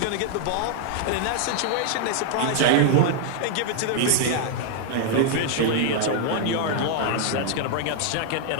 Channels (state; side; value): different; both; correlation 0.00